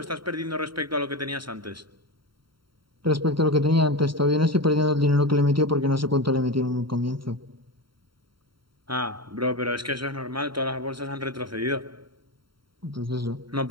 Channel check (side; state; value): left; late; 0.73 ms